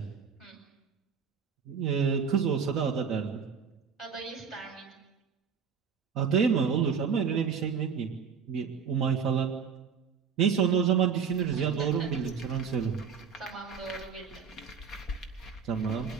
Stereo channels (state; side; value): quieter; left; 6.4 dB